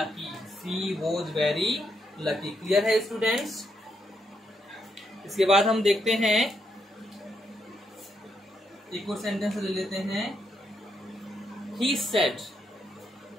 she was very lucky. Clear है स्टूडेंट्स। इसके बाद हम देखते हैं एक और सेंटेंस ले लेते हैं, he said,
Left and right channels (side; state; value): both; normal; correlation 0.79